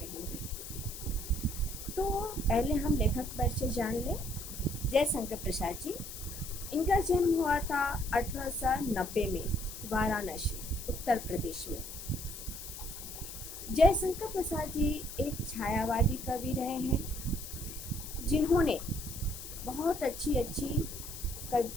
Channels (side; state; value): left; noise; hiss, 10 dB below the sound